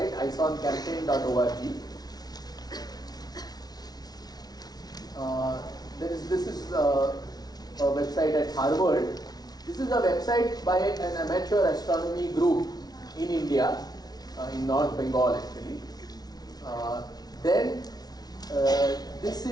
isoncampaign.org. This is a website at Harvard. This is a website by an amateur astronomy group in India, in North Bengal actually. This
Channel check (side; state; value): right; late; 0.19 ms